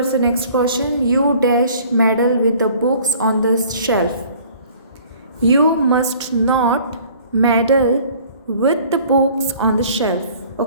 the next question. You dash meddle with the books on the shelf. You must not meddle with the books on the shelf.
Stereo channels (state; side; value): inverted; both; correlation -0.52